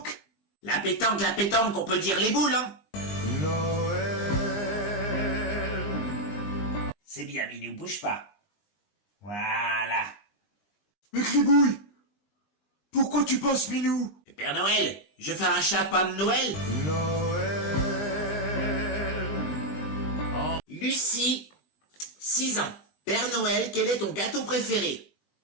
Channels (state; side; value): late; right; 20 ms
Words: La pétanque, on peut dire les boules, hein? Noël. C'est bien, Minou, bouge pas. Voilà. Mais Gribouille, pourquoi tu passes Minou? Père Noël, je fais un chapin de Noël. Noël. Lucie, 6 ans. Père Noël, quel est ton gâteau préféré?